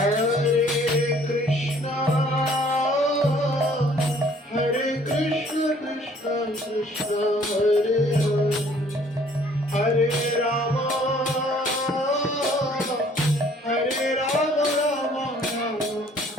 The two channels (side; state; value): both; normal; correlation 0.58